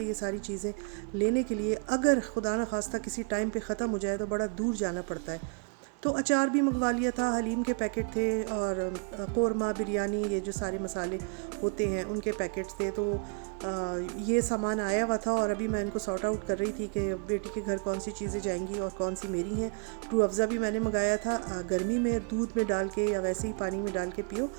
ये सारी चीज़ें लेने के लिए अगर खुदा न खास्ता किसी टाइम पे ख़त्म हो जाए तो बड़ा दूर जाना पड़ता है। तो अचार भी मंगवा लिया था, हलीम के पैकेट थे, और कोरमा, बिरयानी, ये जो सारे मसाले होते हैं उनके पैकेट्स थे। तो ये सामान आया हुआ था और अभी मैं इनको सॉर्ट आउट कर रही थी कि बेटी के घर कौन सी चीज़ें जाएंगी और कौन सी मेरी हैं। रूह अफ़ज़ा भी मैंने मंगाया था, गर्मी में दूध में डाल के या वैसे ही पानी में डाल के पियो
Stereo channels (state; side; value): quieter; left; 38.7 dB